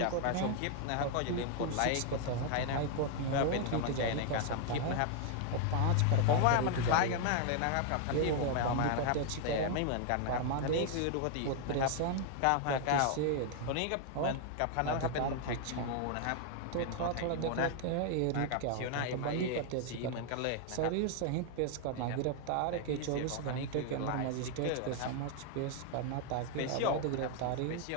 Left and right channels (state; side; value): different; both; correlation 0.00